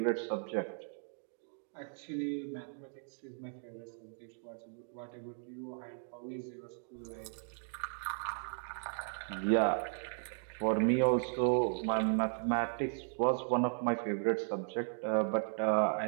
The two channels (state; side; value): silent; left; digital silence